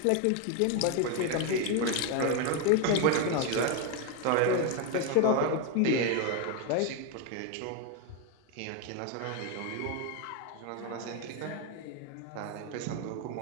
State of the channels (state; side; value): different; both; correlation 0.01